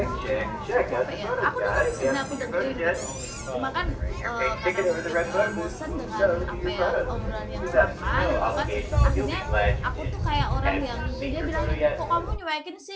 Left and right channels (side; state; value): both; identical; correlation 1.00